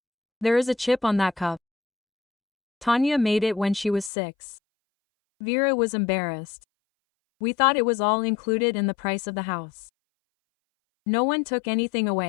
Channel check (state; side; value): drops out; right; at 4.1 s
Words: There is a chip on that cup. Tanya made it when she was 6. Vera was embarrassed. We thought it was all included in the price of the house. No one took anything